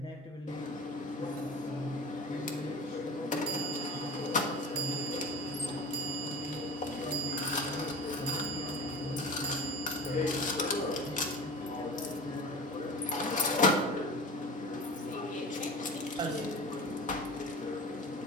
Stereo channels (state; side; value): normal; both; correlation 0.35